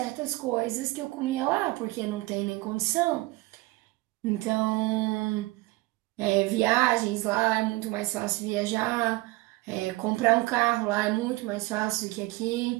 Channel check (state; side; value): quieter; left; 21.4 dB